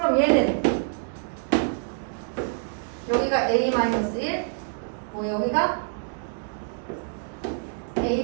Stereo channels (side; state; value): left; silent; digital silence